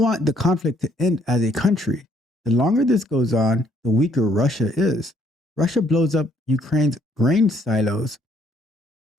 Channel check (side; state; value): both; normal; correlation 0.67